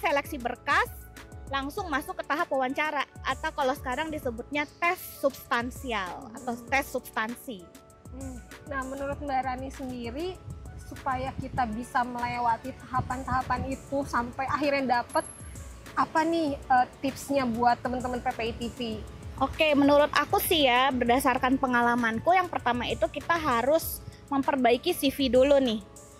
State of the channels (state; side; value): identical; both; correlation 1.00